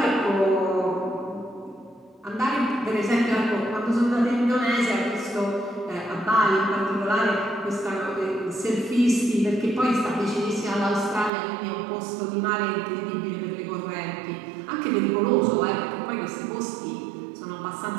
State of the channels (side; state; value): left; drops out; at 11.3 s